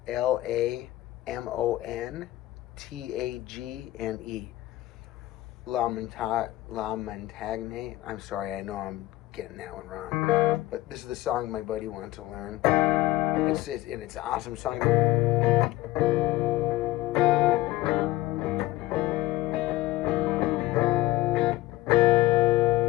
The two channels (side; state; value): right; quieter; 16.9 dB